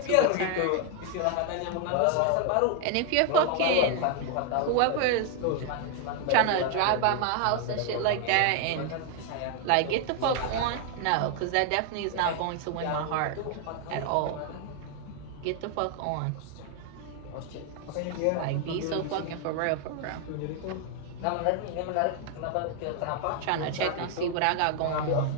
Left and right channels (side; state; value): both; different; correlation 0.00